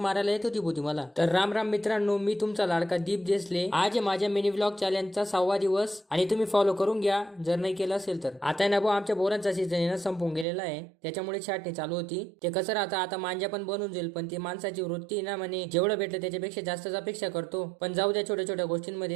मारायला येत होती बोती मला. तर राम राम मित्रांनो, मी तुमचा लाडका दीप देसले. आज आहे माझ्या मिनी व्लॉग चॅलेंजचा 6वा दिवस आणि तुम्ही फॉलो करून घ्या जर नाही केलं असेल तर. आता ना भाऊ आमच्या बोरांचा सीझन ना संपून गेलेला आहे, त्याच्यामुळे छाटणी चालू होती. ते कसं राहतं, आता मांजा पण बनून जाईल, पण ती माणसाची वृत्ती ना म्हणे जेवढं भेटलं त्याच्यापेक्षा जास्तच अपेक्षा करतो. पण जाऊ द्या, छोट्या छोट्या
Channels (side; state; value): left; drops out; at 10.5 s